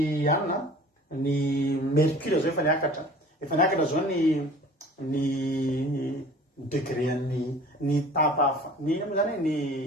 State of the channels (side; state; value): both; normal; correlation 0.46